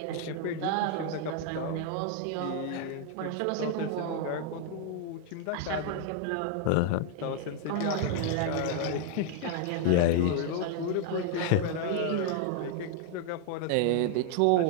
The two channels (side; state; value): both; different; correlation 0.00